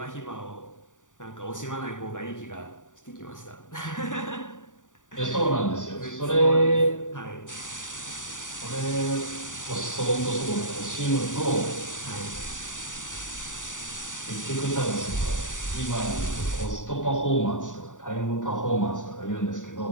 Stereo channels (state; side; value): late; right; 0.87 ms